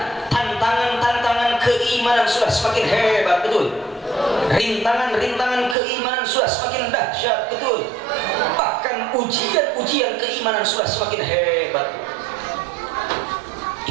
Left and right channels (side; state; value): left; drops out; at 5.8 s